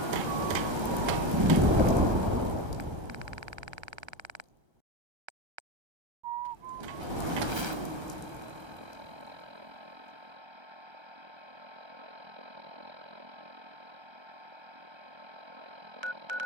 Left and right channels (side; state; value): left; late; 1.3 ms